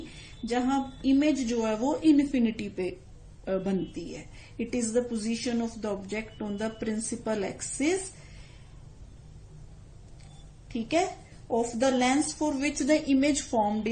जहां इमेज जो है वो इन्फिनिटी पे बनती है। It is the position of the object on the principal axis, ठीक है, of the lens for which the image formed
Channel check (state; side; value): identical; both; correlation 1.00